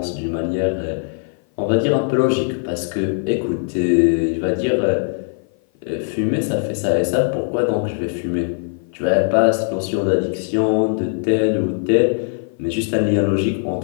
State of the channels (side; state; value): right; silent; 56 dB below the other